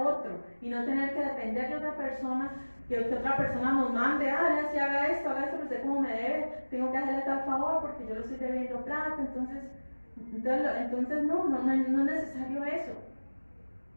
otro y no tener que depender de otra persona, que otra persona nos mande, ya si haga esto, pero usted como me debe, tengo que hacerle tal favor porque yo lo estoy debiendo plata, entonces no es necesario eso.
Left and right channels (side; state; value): both; inverted; correlation -1.00